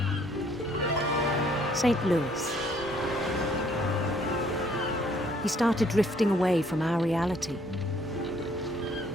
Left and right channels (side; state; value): both; normal; correlation 0.63